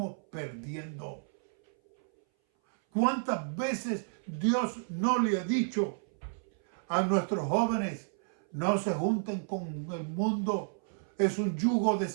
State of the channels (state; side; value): silent; left; 57 dB below the other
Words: perdiendo. ¿Cuántas veces Dios no le ha dicho a nuestros jóvenes, no se junten con el mundo? Es un yugo